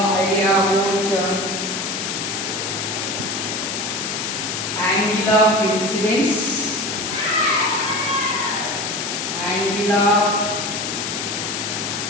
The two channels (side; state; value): left; noise; hiss, 3 dB below the sound